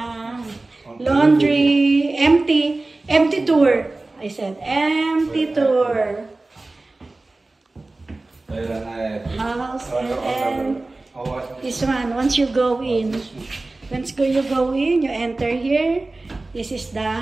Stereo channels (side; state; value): left; quieter; 3.1 dB